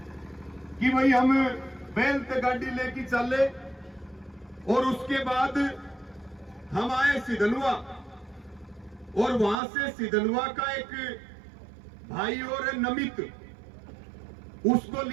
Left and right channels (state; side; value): drops out; left; at 9.6 s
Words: कि भाई हम बैल ते गाड़ी लेके चले और उसके बाद हम आए सिधनवा और वहां से सिधनवा का एक भाई और है नमित, उसको